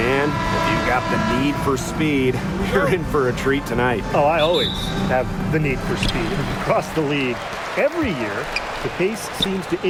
if you've got the need for speed, you're in for a treat tonight. Oh, I always have the need for speed across the league. Every year, the pace seems to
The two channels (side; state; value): both; identical; correlation 1.00